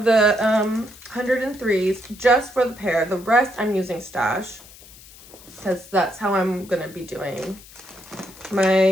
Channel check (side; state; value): left; noise; hiss, 21 dB below the sound